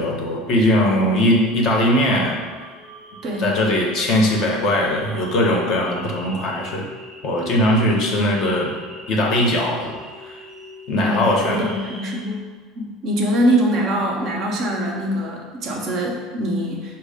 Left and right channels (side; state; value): both; normal; correlation 0.39